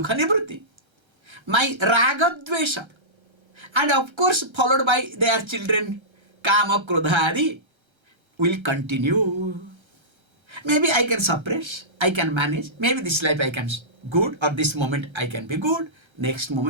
nivrutti, my raga dvesha, and of course followed by their children, kama krodha adi, will continue. Maybe I can suppress, I can manage. Maybe this life I can good, or this moment I can be good. Next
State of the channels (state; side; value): late; left; 1.3 ms